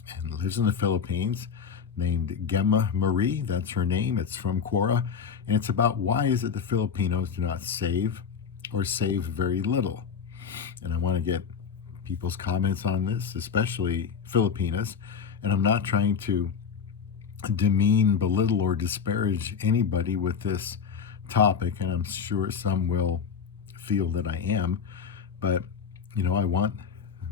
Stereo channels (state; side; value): quieter; right; 6.5 dB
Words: and lives in the Philippines, named Gemma Marie. That's her name. It's from Quora, and it's about why is it the Filipinos do not save or save very little. And I want to get people's comments on this, especially Filipinas. And I'm not trying to demean, belittle, or disparage anybody with this topic, and I'm sure some will feel that I am. But, I want